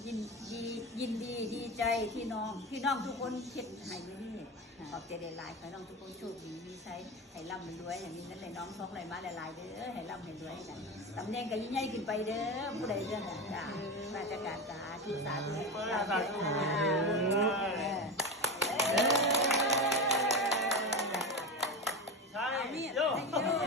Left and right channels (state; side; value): normal; both; correlation 0.21